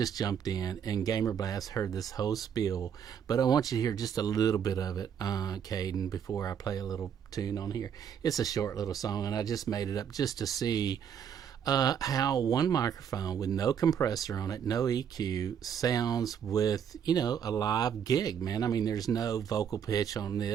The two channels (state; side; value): quieter; left; 8.2 dB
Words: jumped in, and Gamer Blast heard this whole spiel, but I want you to hear just a little bit of it, Caden, before I play a little tune on here. It's a short little song, and I just made it up just to see how one microphone with no compressor on it, no EQ, sounds with, you know, a live gig, man. I mean, there's no vocal pitch on